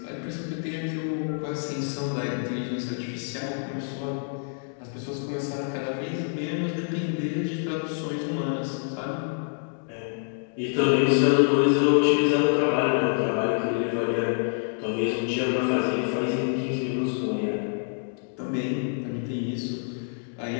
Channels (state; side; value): silent; right; digital silence